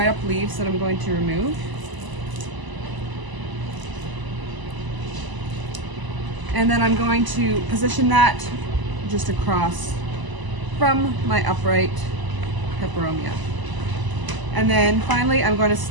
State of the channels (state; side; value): late; left; 1.0 ms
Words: up leaves that I'm going to remove. And then I'm going to position that just across from my upright peperomia. And then finally I'm going to